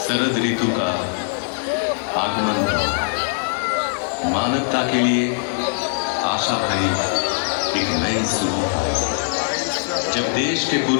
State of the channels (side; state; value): right; silent; digital silence